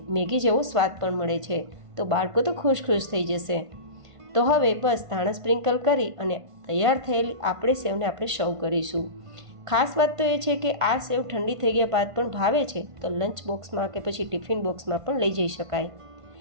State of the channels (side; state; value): left; late; 1.5 ms